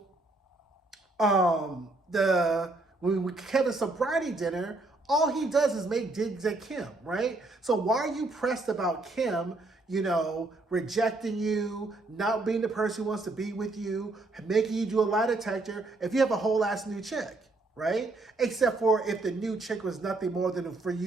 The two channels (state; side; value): quieter; left; 3.1 dB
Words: Kevin's sobriety dinner, all he does is make digs at Kim, right? So why are you pressed about Kim, rejecting you, not being the person who wants to be with you, making you do a lie detector if you have a whole ass new chick? Right? Except for if the new chick was nothing more than for